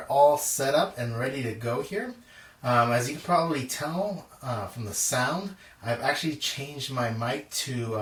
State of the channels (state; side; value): identical; both; correlation 1.00